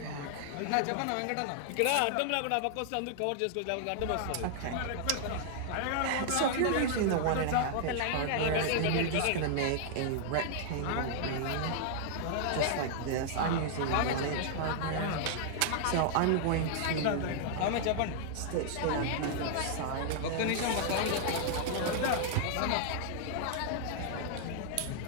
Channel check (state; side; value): different; both; correlation -0.01